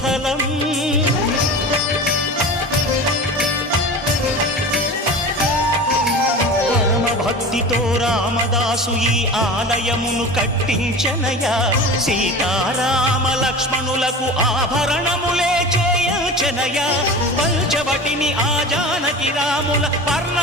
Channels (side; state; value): both; normal; correlation 0.33